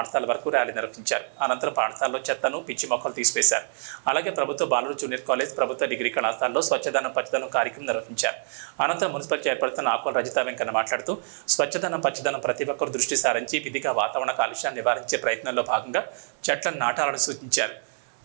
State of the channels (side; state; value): left; silent; 61 dB below the other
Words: వరకు ర్యాలీ నిర్వహించారు. అనంతరం పాఠశాలలో చెత్తను, పిచ్చి మొక్కలు తీసివేశారు. అలాగే ప్రభుత్వ బాలుర జూనియర్ కాలేజ్, ప్రభుత్వ డిగ్రీ కళాశాలలో స్వచ్ఛదనం పచ్చదనం కార్యక్రమం నిర్వహించారు. అనంతరం మున్సిపల్ చైర్పర్సన్ ఆకుల రజిత వెంకన్న మాట్లాడుతూ స్వచ్ఛదనం పచ్చదనం ప్రతి ఒక్కరు దృష్టి సారించి విధిగా వాతావరణ కాలుష్యాన్ని నివారించే ప్రయత్నంలో భాగంగా చెట్లను నాటాలని సూచించారు.